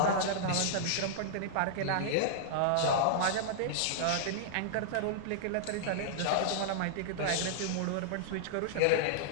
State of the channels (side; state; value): both; different; correlation -0.02